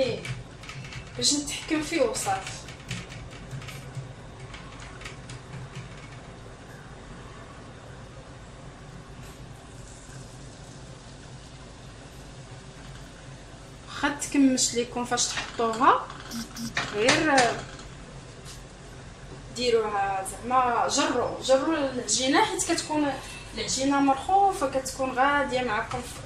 باش نتحكم فيه وصافي. واخا تكمش ليكم فاش تحطوها، غير ديروها زعما جروا العجينه، حيت كتكون العجينه مرخوفه، كتكون غاديه معكم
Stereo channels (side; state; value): both; identical; correlation 1.00